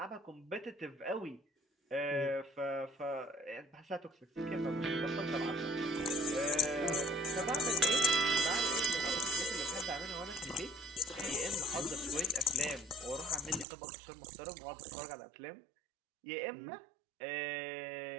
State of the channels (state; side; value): drops out; left; at 13.7 s